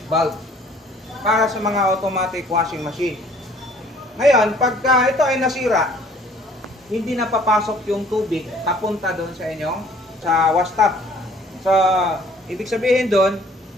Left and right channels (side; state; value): both; normal; correlation 0.56